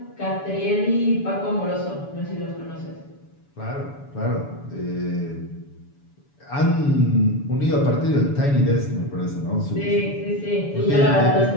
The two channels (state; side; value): late; right; 7.0 ms